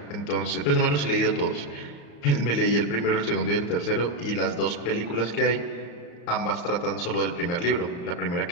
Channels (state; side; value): late; right; 35 ms